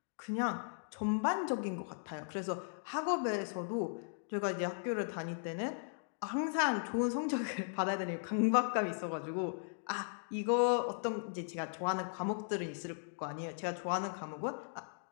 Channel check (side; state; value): right; silent; digital silence